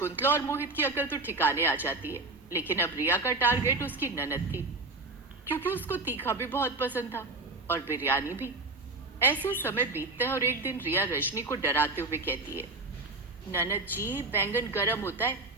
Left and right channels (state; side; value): quieter; left; 3.1 dB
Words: और मोहित की अकल तो ठिकाने आ जाती है। लेकिन अब रिया का टारगेट उसकी ननद थी, क्योंकि उसको तीखा भी बहुत पसंद था और बिरयानी भी। ऐसे समय बीतता है और एक दिन रिया रजनी को डराते हुए कहती है, ननद जी, बैंगन गर्म होता है।